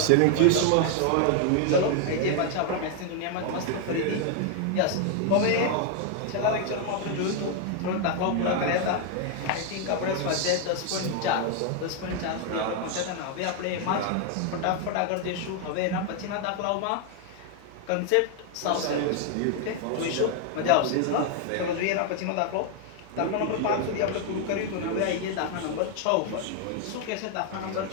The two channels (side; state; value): both; different; correlation 0.00